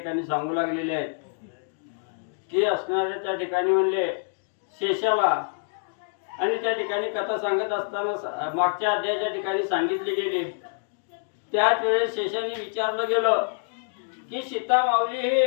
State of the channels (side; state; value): right; silent; digital silence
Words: सांगू लागलेले आहेत की असणाऱ्या त्या ठिकाणी म्हणले शेषाला आणि त्या ठिकाणी कथा सांगत असताना मागच्या अध्यायाच्या ठिकाणी सांगितली गेली त्याच वेळेस शेषाने विचारलं गेलं की सीता माऊली हे